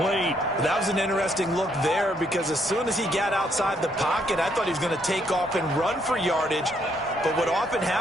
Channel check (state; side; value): normal; both; correlation 0.72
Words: That was an interesting look there because as soon as he got outside the pocket, I thought he was going to take off and run for yardage. But what often